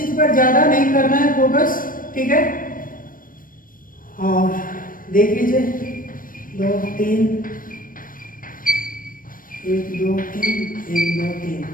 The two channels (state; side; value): late; right; 0.40 ms